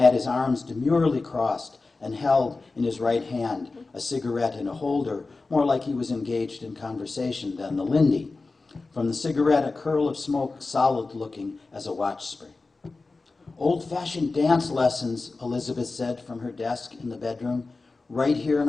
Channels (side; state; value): right; quieter; 3.7 dB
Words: his arms demurely crossed and held in his right hand a cigarette in a holder, more like he was engaged in conversation than the Lindy. From the cigarette, a curl of smoke solid-looking as a watch spring. Old-fashioned dance lessons, Elizabeth said from her desk in the bedroom. Right here